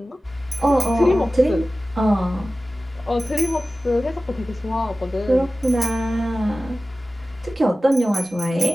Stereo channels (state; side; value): normal; both; correlation 0.96